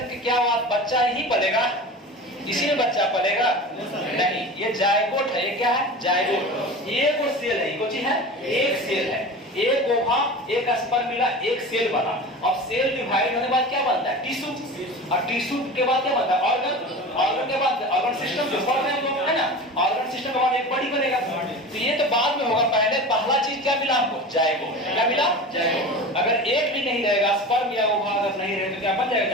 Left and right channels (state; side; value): normal; both; correlation 0.32